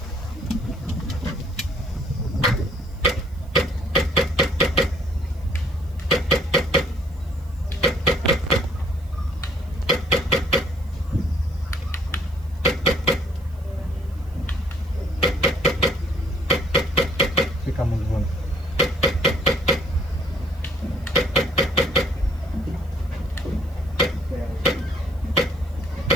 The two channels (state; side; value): noise; right; hiss, 30 dB below the sound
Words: Fica mult vânt.